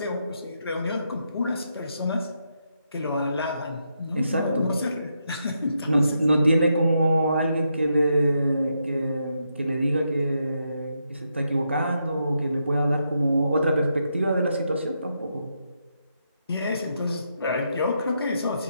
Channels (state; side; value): inverted; both; correlation -0.81